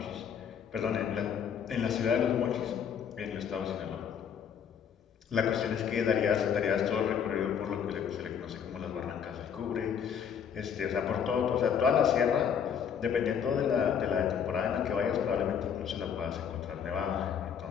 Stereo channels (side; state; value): right; quieter; 7.8 dB